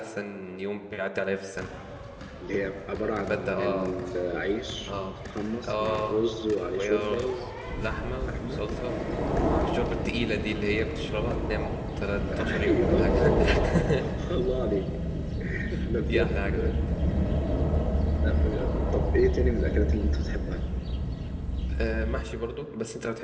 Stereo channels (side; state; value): both; identical; correlation 1.00